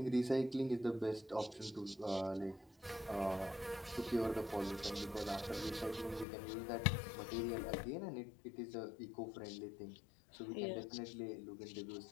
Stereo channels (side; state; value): right; drops out; at 6.2 s